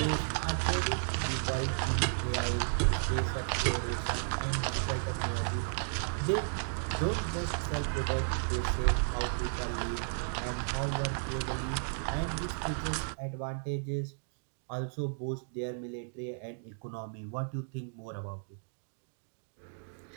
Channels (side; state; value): left; silent; digital silence